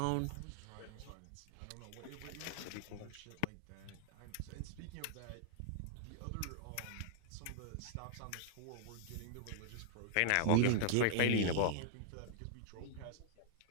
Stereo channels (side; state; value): both; different; correlation 0.00